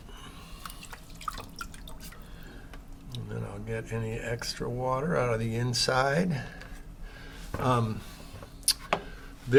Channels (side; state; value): both; identical; correlation 1.00